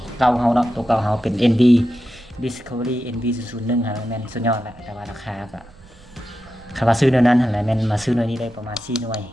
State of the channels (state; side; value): noise; right; rumble, 24 dB below the sound